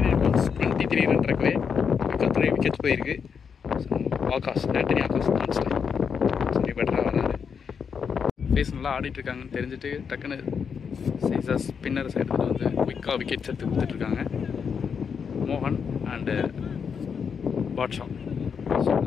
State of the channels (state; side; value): quieter; right; 6.5 dB